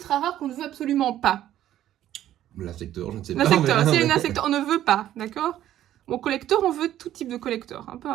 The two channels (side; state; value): left; quieter; 12.4 dB